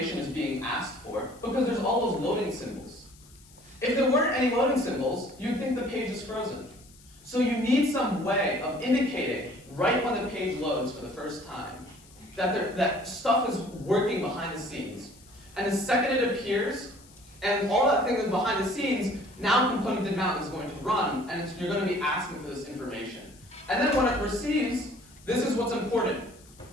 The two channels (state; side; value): noise; left; hiss, 25 dB below the sound